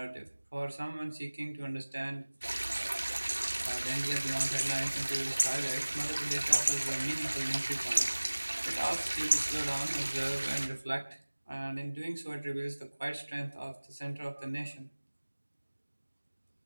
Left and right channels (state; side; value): inverted; both; correlation -1.00